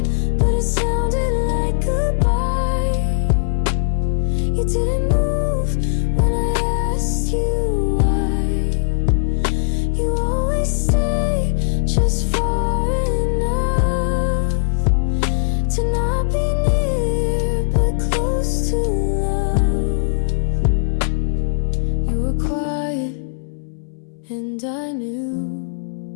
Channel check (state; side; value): silent; right; 66 dB below the other